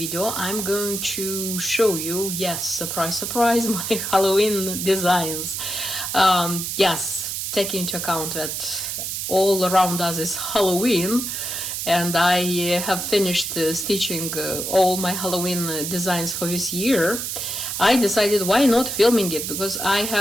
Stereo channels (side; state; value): right; noise; hiss, 4 dB below the sound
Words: I'm going to show you, yes, surprise surprise, my Halloween designs. Yes, taking into account that all around us is Halloween, and I have finished stitching all my Halloween designs for this year. I decided why not filming it, because I